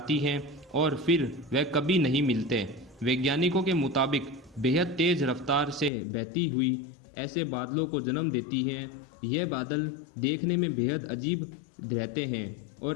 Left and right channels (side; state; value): right; drops out; at 5.9 s